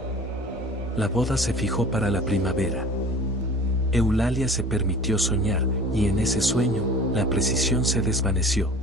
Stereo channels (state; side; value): normal; both; correlation 0.43